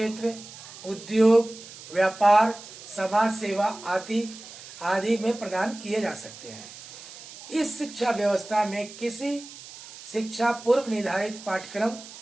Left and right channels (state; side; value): noise; right; hiss, 16 dB below the sound